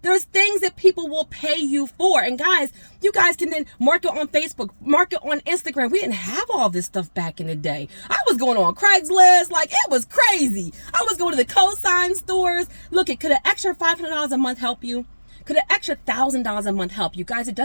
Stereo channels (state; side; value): inverted; both; correlation -1.00